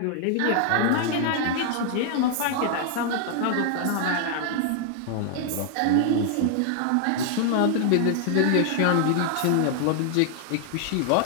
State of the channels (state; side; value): different; both; correlation 0.00